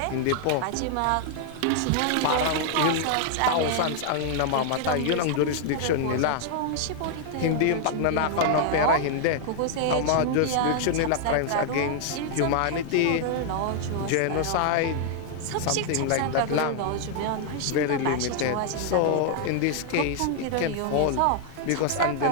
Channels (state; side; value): different; both; correlation 0.00